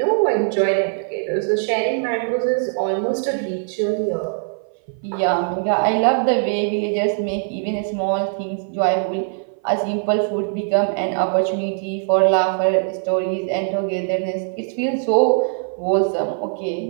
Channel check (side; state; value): left; silent; 58 dB below the other